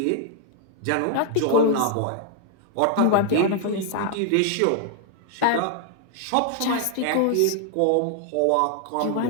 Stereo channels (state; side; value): different; both; correlation 0.00